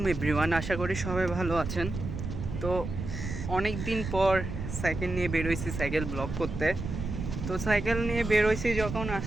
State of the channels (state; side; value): noise; right; rumble, 6 dB below the sound